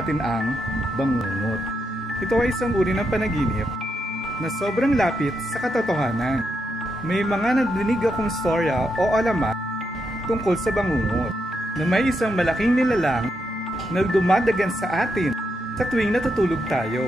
ang bangungot. Ito ay isang uri ng panaginip na sobrang lapit sa katotohanan. May mga nadinig akong storya o alamat tungkol sa bangungot na may isang malaking nilalang na dumadagan sa atin sa tuwing natutulog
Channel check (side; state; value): both; normal; correlation 0.82